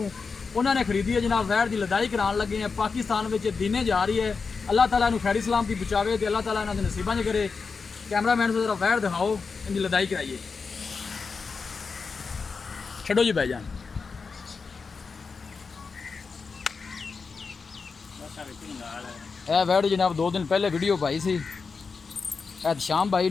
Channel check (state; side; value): quieter; right; 4.9 dB